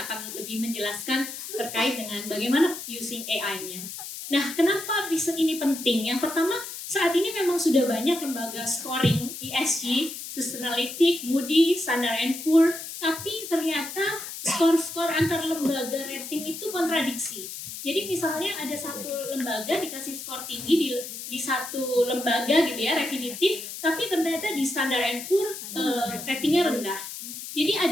akan lebih menjelaskan terkait dengan bagaimana using AI-nya. Nah, kenapa riset ini penting? Yang pertama, saat ini memang sudah banyak lembaga scoring ESG, Sustainalytics, Moody's, Standard & Poor's, tapi ternyata skor-skor antar lembaga rating itu kontradiksi. Jadi misalnya ada satu lembaga dikasih skor tinggi di satu lembaga gitu ya, Refinitiv, tapi ternyata di Standard & Poor's ratingnya rendah. Jadi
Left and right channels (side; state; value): left; noise; hiss, 9 dB below the sound